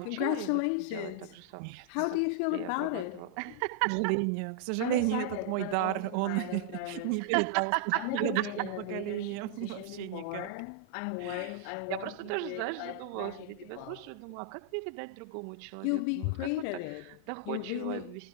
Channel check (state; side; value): different; both; correlation -0.01